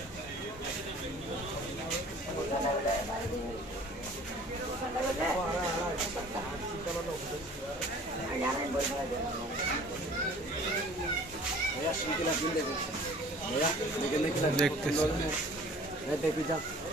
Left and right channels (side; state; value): both; normal; correlation 0.49